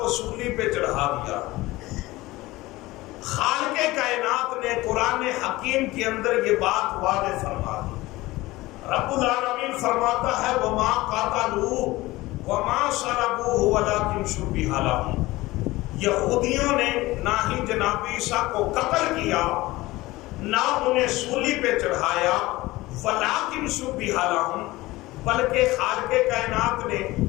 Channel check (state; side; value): quieter; right; 19.3 dB